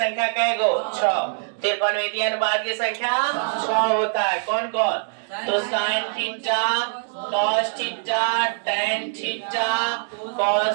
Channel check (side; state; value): left; silent; 63 dB below the other